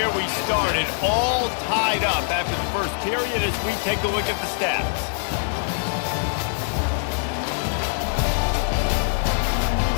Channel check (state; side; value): silent; right; digital silence